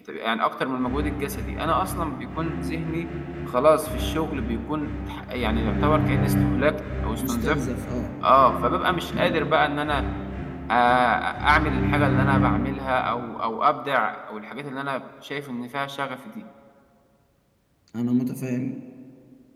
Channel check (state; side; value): identical; both; correlation 1.00